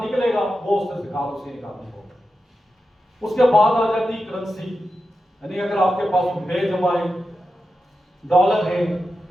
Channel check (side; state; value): both; normal; correlation 0.90